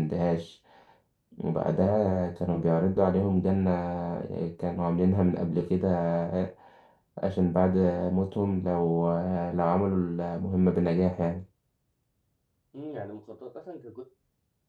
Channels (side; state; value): both; identical; correlation 1.00